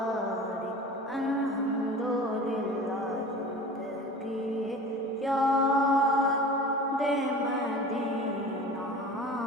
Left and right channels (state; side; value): normal; both; correlation 0.38